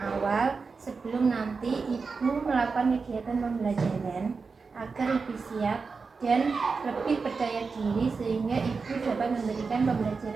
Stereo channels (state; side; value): quieter; left; 4.7 dB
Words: awal sebelum nanti Ibu melakukan kegiatan pembelajaran agar lebih siap dan lebih percaya diri sehingga Ibu dapat memberikan